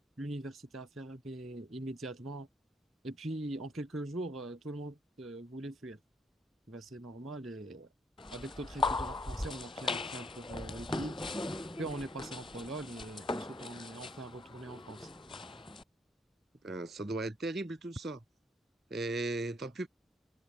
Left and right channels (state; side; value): normal; both; correlation 0.68